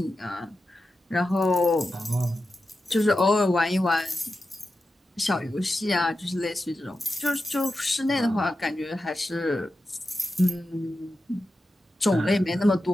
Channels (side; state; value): both; normal; correlation 0.91